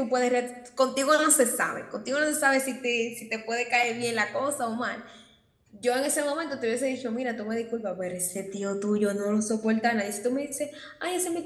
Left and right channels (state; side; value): identical; both; correlation 1.00